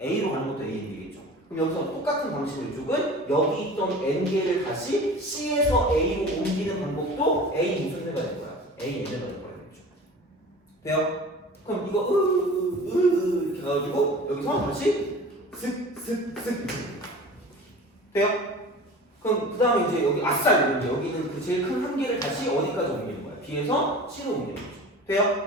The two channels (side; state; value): both; normal; correlation 0.39